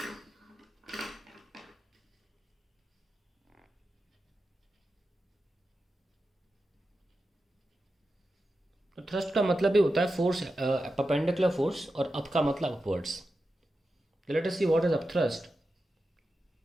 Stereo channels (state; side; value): normal; both; correlation 0.91